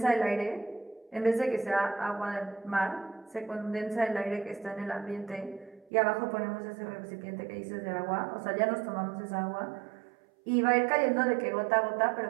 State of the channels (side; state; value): left; drops out; at 5.9 s